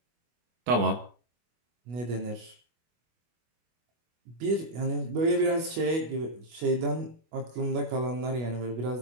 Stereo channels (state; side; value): late; left; 25 ms